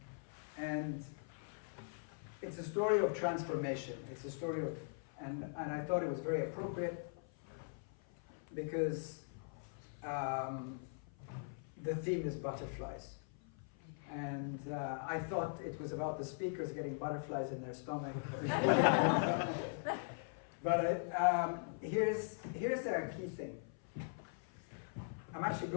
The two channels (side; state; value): right; silent; 50 dB below the other